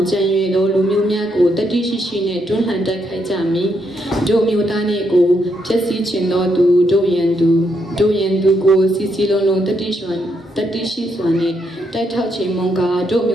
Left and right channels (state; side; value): normal; both; correlation 0.78